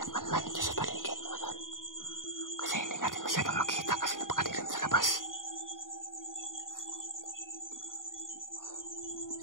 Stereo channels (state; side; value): late; right; 0.89 ms